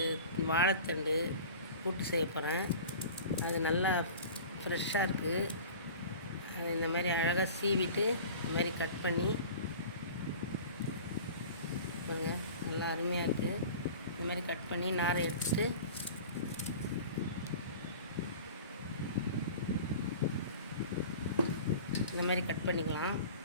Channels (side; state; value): both; inverted; correlation -0.39